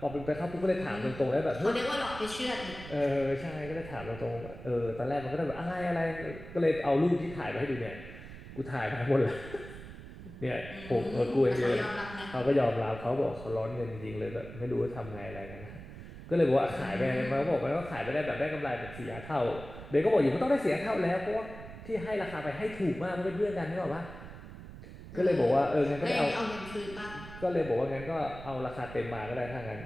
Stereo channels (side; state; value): right; noise; rumble, 13 dB below the sound